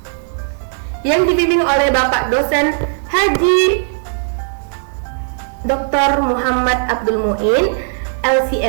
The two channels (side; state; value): left; silent; digital silence